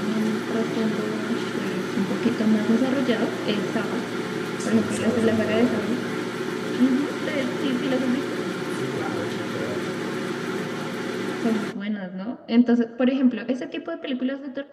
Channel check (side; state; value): both; identical; correlation 1.00